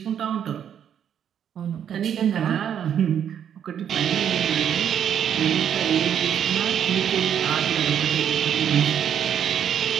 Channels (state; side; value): quieter; left; 9.0 dB